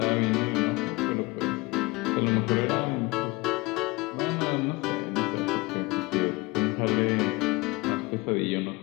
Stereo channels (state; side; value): quieter; right; 23.5 dB